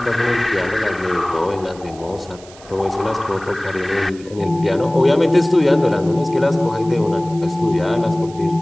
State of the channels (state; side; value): noise; right; hiss, 22 dB below the sound